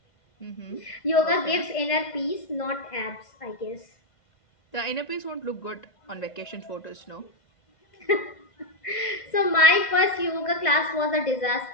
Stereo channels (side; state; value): right; late; 2.1 ms